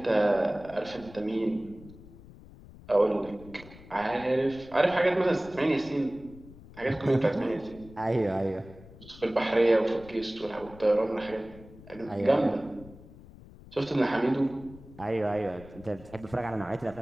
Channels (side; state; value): left; noise; rumble, 19 dB below the sound